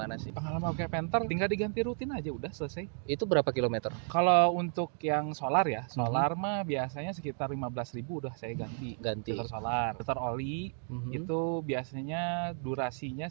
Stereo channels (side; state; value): left; silent; 56 dB below the other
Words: sih? Pengalaman pakai Panther tinggal diganti rutin aja udah selesai. Itu berapa kilometer? Kalau untuk yang solar ya, solar mah biasanya sekitar 15.000 udah saya ganti. Ganti. Filter solar, filter oli Mhm. itu biasanya durasinya